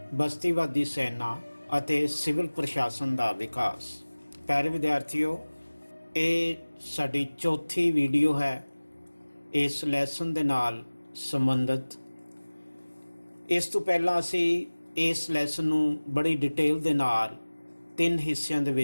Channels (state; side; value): inverted; both; correlation -1.00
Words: ਬਸਤੀਵਾਦੀ ਸੈਨਾ ਅਤੇ ਸਿਵਲ ਪ੍ਰਸ਼ਾਸਨ ਦਾ ਵਿਕਾਸ। ਪਿਆਰੇ ਵਿਦਿਆਰਥੀਓ, ਇਹ ਸਾਡੀ ਚੌਥੀ ਵੀਡੀਓ ਹੈ ਇਸ ਲੈਸਨ ਦੇ ਨਾਲ ਸੰਬੰਧਿਤ। ਇਸ ਤੋਂ ਪਹਿਲਾਂ ਅਸੀਂ ਇਸ ਲੈਸਨ ਨੂੰ ਬੜੀ ਡਿਟੇਲ ਦੇ ਨਾਲ 3 ਹਿੱਸਿਆਂ ਦੇ